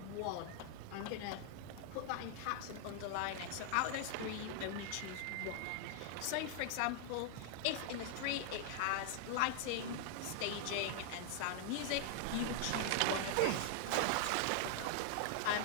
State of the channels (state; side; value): different; both; correlation 0.00